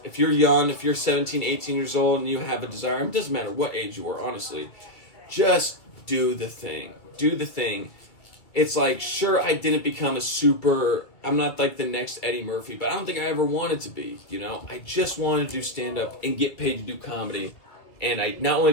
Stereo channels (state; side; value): late; right; 2.3 ms